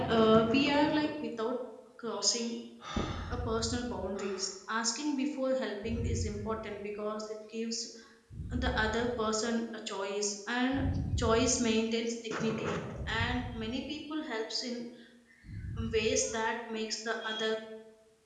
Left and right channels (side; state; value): both; identical; correlation 1.00